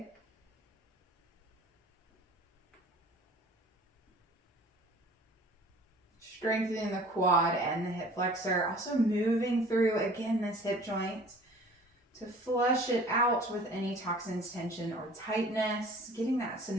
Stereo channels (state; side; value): normal; both; correlation 0.48